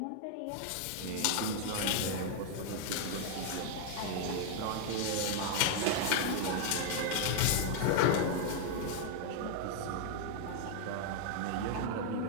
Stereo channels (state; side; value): different; both; correlation 0.00